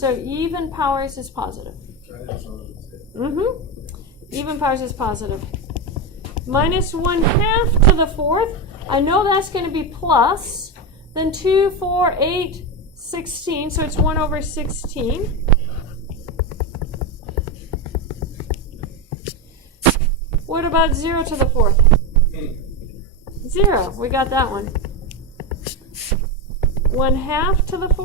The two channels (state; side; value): normal; both; correlation 0.14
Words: even powers is positive. Even powers is positive. Minus 1/2 to the 4th. I know that's going to be plus. Then 2, 4, 8, 16. So it's 1 over 16. What about 0 to the 4th? 0. We got that one. 1/2 to the